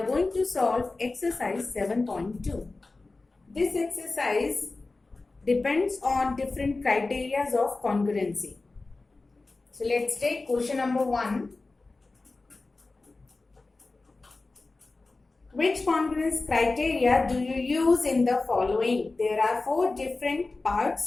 going to solve exercise 7.2. This exercise depends on different criteria of congruency. So let's take question number 1. Which congruence criteria do you use in the following? There are 4 different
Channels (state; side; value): quieter; right; 3.5 dB